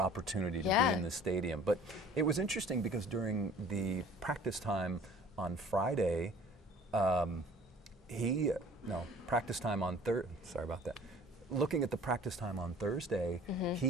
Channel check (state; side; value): normal; both; correlation 0.49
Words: to be in the stadium. But it was interesting because during the practice time on Friday, looking at the practice time on Thursday,